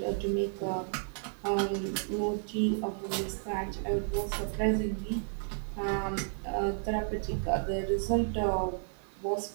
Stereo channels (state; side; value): silent; left; 56 dB below the other